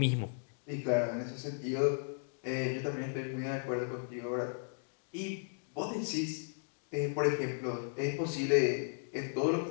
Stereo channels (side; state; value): right; silent; digital silence